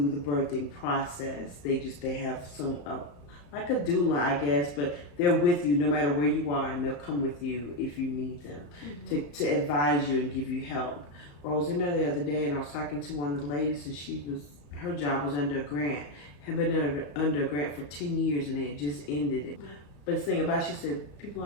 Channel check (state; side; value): late; right; 34 ms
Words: the birthing process. They have some like a doula, I guess, but they're with you no matter where you are, and they'll come with you if you need them to advise you and give you help. Well, I was in there the other day, and I was talking to one of the ladies, and her job was under a grant. Had been under a grant for 10 years, and they had just ended it. But the thing about it, she said, people